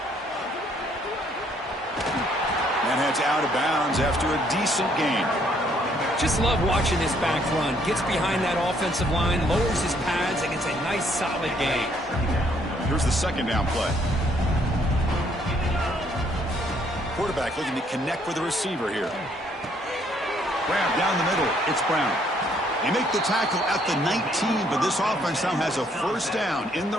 And heads out of bounds after a decent gain. Just love watching this back run. Gets behind that offensive line, lowers his pads, and gets a nice solid gain. Here's the second down play. Quarterback looking to connect with the receiver here. Grab down the middle. It's Brown. They make the tackle at the 19, but this offense now has a first down in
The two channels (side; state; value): both; normal; correlation 0.67